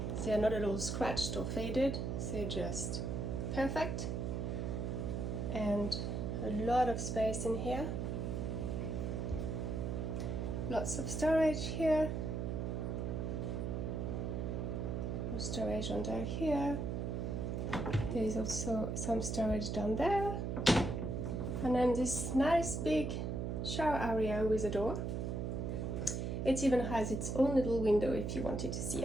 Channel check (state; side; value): noise; right; hum, 1 dB below the sound